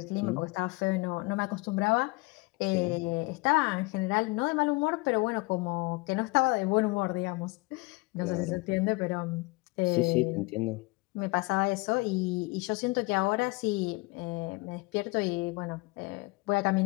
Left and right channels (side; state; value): right; quieter; 25.0 dB